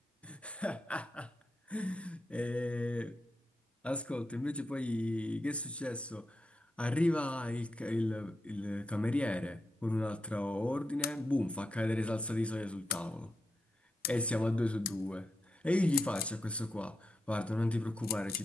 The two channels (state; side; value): normal; both; correlation 0.87